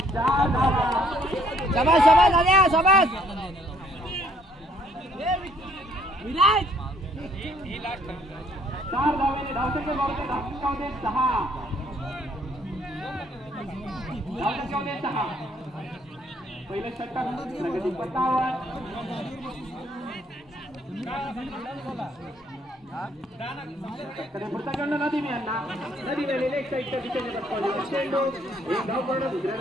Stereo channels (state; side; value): normal; both; correlation 0.64